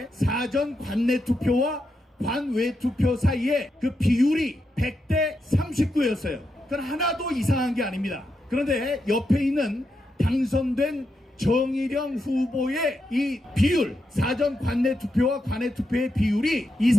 사전 관내 투표와 관외 투표 사이에 그 비율이 100대 39였어요. 그건 하나도 이상한 게 아닙니다. 그런데 옆에 있는 당선된 정일영 후보의 이 비율, 사전 관내 투표와 관외 투표의 비율이 이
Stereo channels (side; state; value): both; normal; correlation 0.84